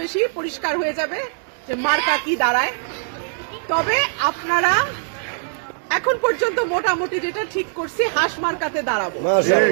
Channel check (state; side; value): silent; left; digital silence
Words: বেশি পরিষ্কার হয়ে যাবে যে মার্কা কি দাঁড়ায়। তবে আপনারা এখন পর্যন্ত মোটামুটি যেটা ঠিক করছি হাঁস মার্কাতে দাঁড়াবো।